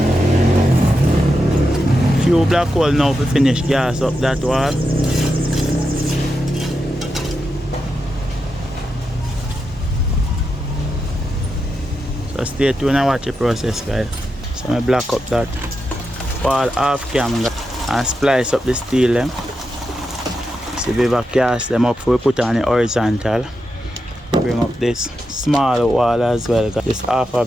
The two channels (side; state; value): both; normal; correlation 0.87